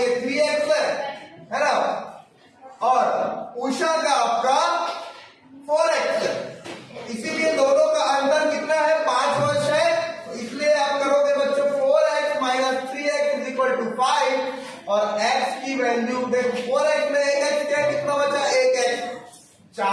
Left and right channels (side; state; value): both; identical; correlation 1.00